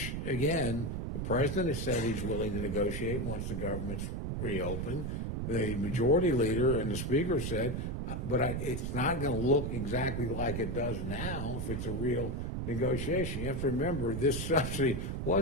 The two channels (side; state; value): right; noise; rumble, 3 dB below the sound